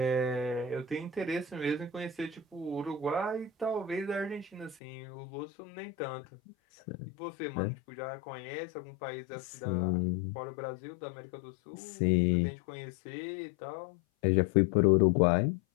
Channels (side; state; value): right; drops out; at 4.8 s